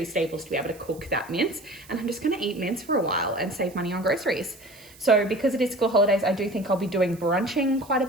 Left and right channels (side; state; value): right; noise; hiss, 23 dB below the sound